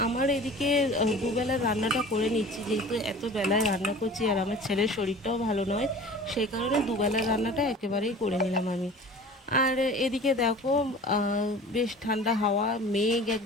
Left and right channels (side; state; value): both; normal; correlation 0.41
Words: আমার এদিকে দুবেলার রান্নাটা করে নিচ্ছি, যেহেতু এত বেলায় রান্না করছি আর আমার ছেলের শরীরটাও ভালো নয়, সেই কারণে দুবেলার রান্নাটা একেবারেই করে নিলাম আমি। আর এদিকে দেখো, বেশ ঠান্ডা হাওয়া, মেঘ